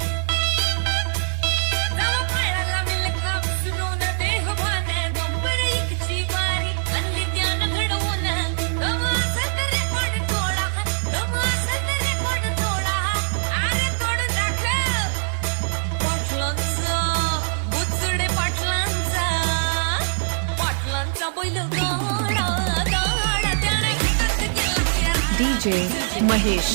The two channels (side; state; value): left; silent; digital silence